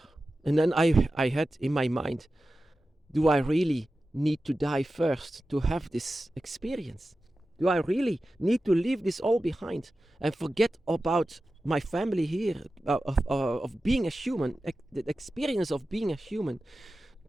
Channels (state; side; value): normal; both; correlation 0.94